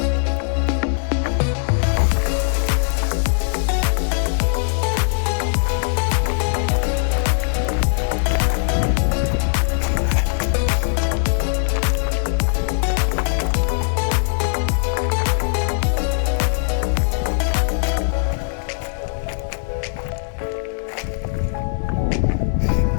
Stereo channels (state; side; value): silent; right; digital silence